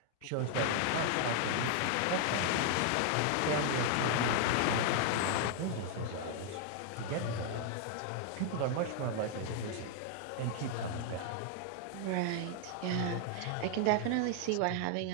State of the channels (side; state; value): both; different; correlation 0.00